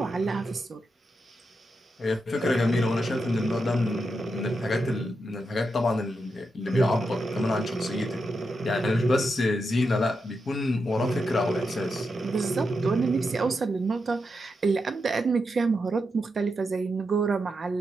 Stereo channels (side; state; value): both; normal; correlation 0.86